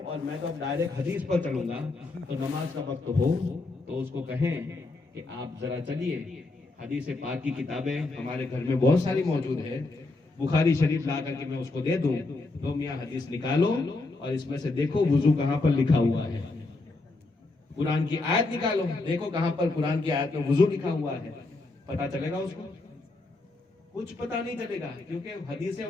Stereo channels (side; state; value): right; quieter; 3.3 dB